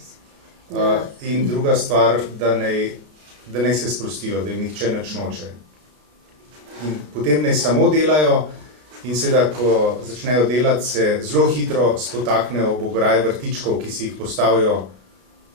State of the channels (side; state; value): left; late; 33 ms